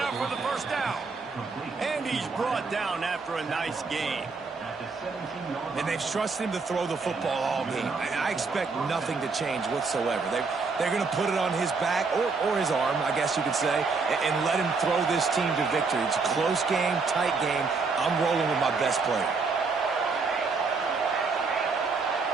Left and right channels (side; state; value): left; quieter; 4.5 dB